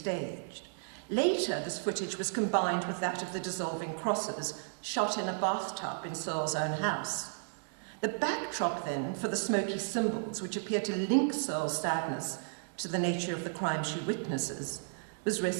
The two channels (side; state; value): left; silent; digital silence